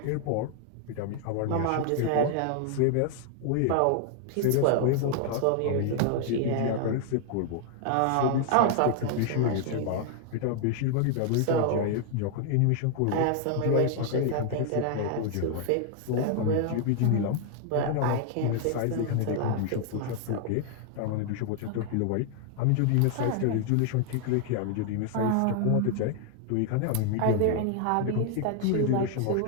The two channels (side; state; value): both; different; correlation 0.00